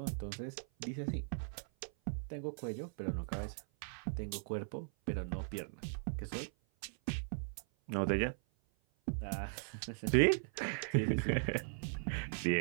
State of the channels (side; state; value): left; silent; 52 dB below the other